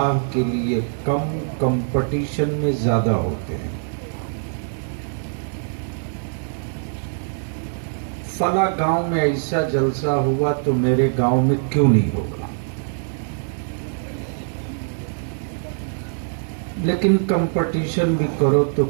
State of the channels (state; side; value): silent; left; digital silence